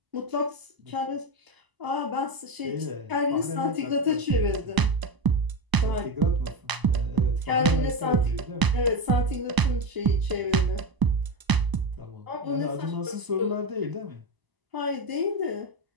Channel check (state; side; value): late; left; 1.0 ms